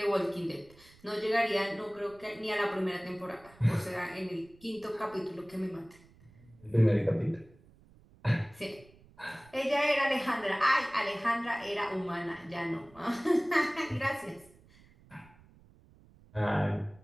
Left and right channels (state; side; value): noise; right; rumble, 26 dB below the sound